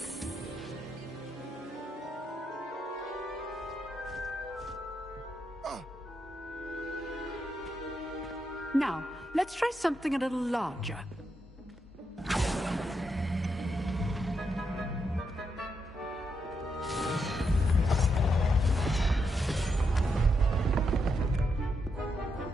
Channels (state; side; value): normal; both; correlation 0.82